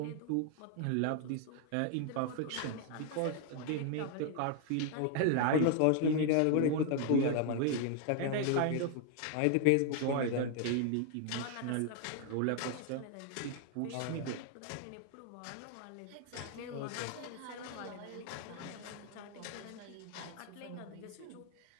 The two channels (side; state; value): both; different; correlation 0.00